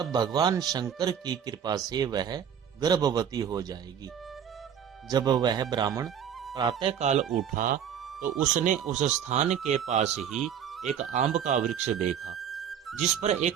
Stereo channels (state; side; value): quieter; left; 8.6 dB